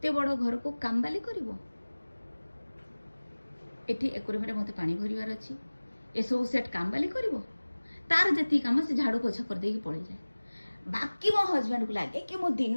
बड़ घर को काम बाली करिवो एठी एकुरे मेरे मते पानी भरिवार अछि ए सब सेट काम बाली करिवो तार जति काम से झाड़ू पोछा कर देकी पड़े जाए बाकी मो हस्बैंड को लगे कि मो दिन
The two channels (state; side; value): inverted; both; correlation -1.00